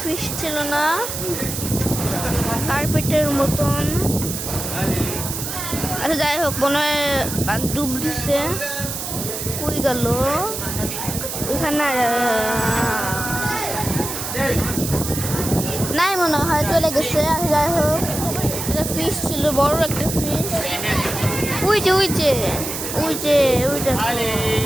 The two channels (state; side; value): noise; right; hiss, 5 dB below the sound